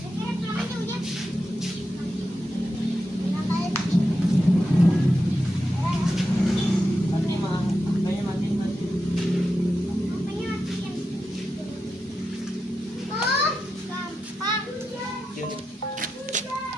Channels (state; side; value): normal; both; correlation 0.88